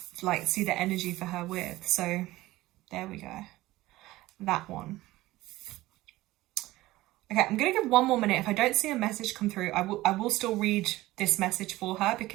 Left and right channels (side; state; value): left; quieter; 17.7 dB